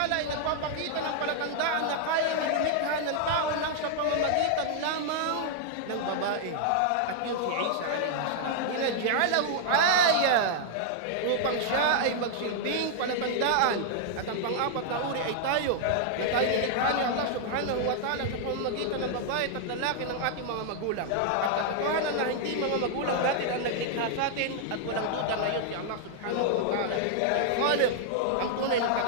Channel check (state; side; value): different; both; correlation -0.01